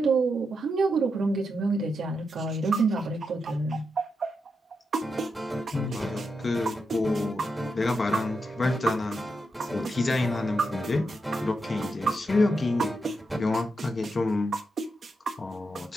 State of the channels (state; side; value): normal; both; correlation 0.85